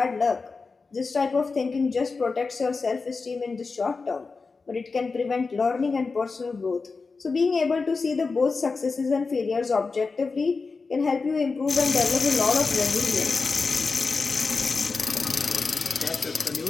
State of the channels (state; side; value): quieter; right; 4.4 dB